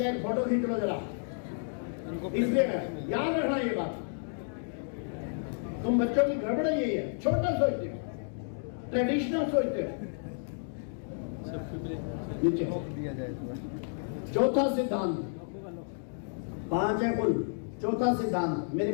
एक फोटो खींच लो जरा, इसलिए याद रखना ये बात। तुम बच्चों की गड़बड़ यही है, छोटा सोचते हो, ट्रेडिशनल सोचते हो। नीचे चौथा सिद्धांत, 5 है कुल। चौथा सिद्धांत मेरे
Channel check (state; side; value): silent; right; digital silence